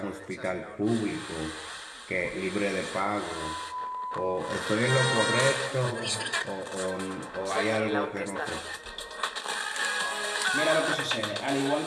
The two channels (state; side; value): identical; both; correlation 1.00